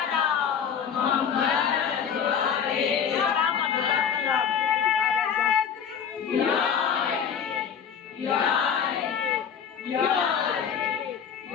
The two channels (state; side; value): quieter; right; 7.6 dB